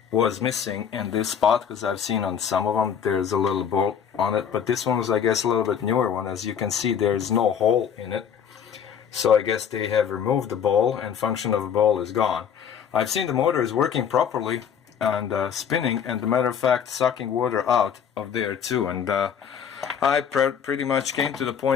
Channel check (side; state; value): right; quieter; 7.9 dB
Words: was missing in this spot, because I've seen on some of them there's a little bolt on it, but this one was, I guess, a little bit newer one. As you can see, there's no hole in it, so I guess they have removed the bowl and function of the bowl is gone. I've seen the motor is working properly and spinning, and, as a matter of fact, sucking water out of there too. And I pretty much came to the